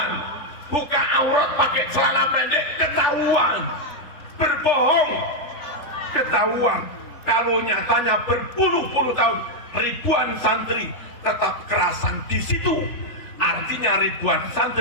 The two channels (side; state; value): right; late; 3.4 ms